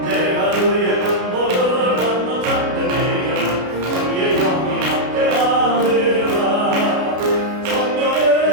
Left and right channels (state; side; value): late; left; 33 ms